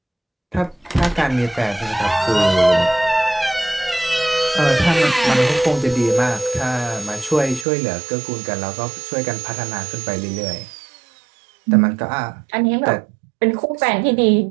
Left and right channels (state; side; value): drops out; left; at 7.7 s